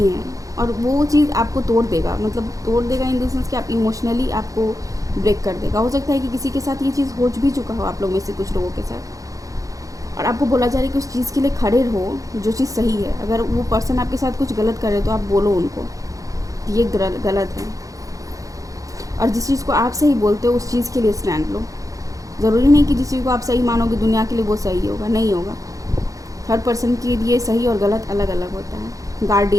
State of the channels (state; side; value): late; left; 0.16 ms